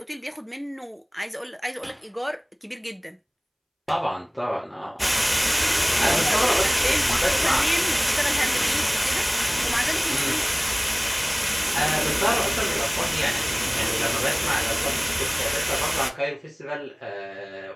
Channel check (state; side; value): identical; both; correlation 1.00